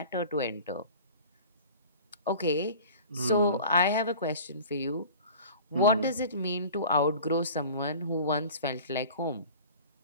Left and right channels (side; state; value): both; inverted; correlation -0.41